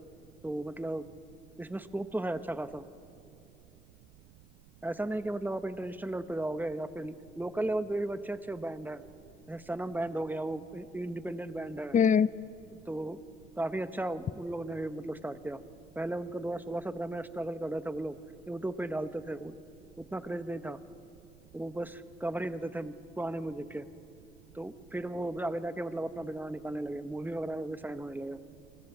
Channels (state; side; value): noise; right; rumble, 21 dB below the sound